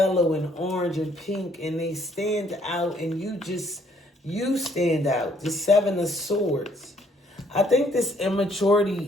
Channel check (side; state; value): both; normal; correlation 0.65